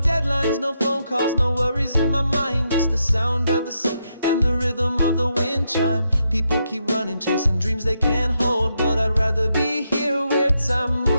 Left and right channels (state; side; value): inverted; both; correlation -0.81